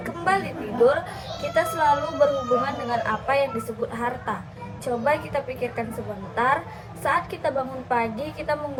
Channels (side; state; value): both; identical; correlation 1.00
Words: kembali tidur, kita selalu berhubungan dengan apa yang disebut harta. Coba kita pikirkan sebentar, saat kita bangun pagi, kita